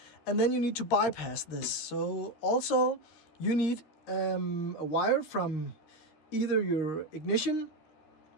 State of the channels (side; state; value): right; late; 13 ms